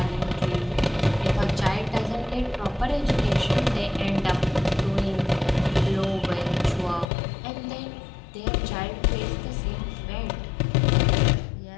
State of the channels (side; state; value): right; drops out; at 7.1 s